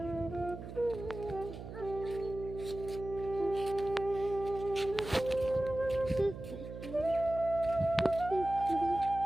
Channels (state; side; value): noise; right; hum, 10 dB below the sound